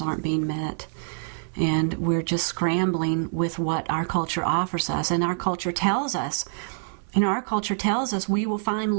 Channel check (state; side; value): silent; left; 61 dB below the other